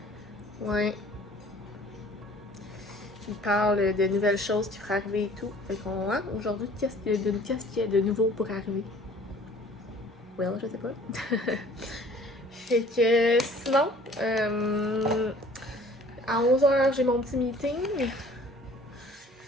Ouais. Il parle de nouvelles choses qui pourraient arriver et tout. Fait qu'on, aujourd'hui, qu'est-ce qu'il y a de nouveau pour arriver? Well, je sais pas. Fait que, sinon, à 11h, j'ai mon petit meeting.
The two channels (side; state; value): both; normal; correlation 0.51